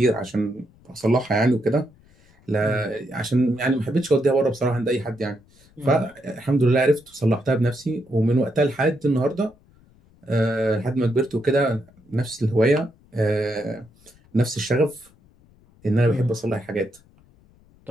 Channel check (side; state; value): left; noise; rumble, 29 dB below the sound